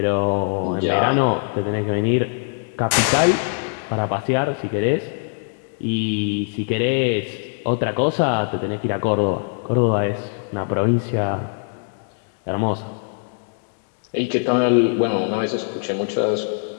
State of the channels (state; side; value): silent; right; digital silence